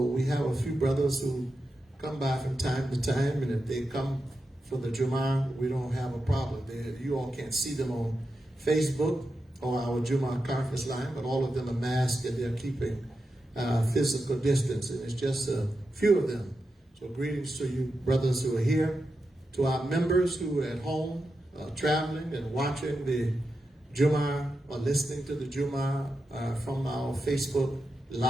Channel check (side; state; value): both; normal; correlation 0.89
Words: we have a few brothers who come by from time to time, and if they come for the Jummah, we don't have a problem. You all can't see them on Facebook or our Jummah conference line, but all of them are masked and they're keeping physical distance, and it's just a few of them. So greetings to you brothers who are here, to our members who are at home traveling and watching the Jummah or listening to the Jummah from our Facebook